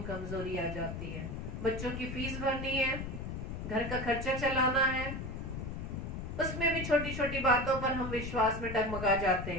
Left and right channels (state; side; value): noise; left; rumble, 6 dB below the sound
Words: कमजोरी आ जाती है। बच्चों की फीस भरनी है, घर का खर्चा चलाना है, उसमें भी छोटी छोटी बातों पर हम विश्वास में डगमगा जाते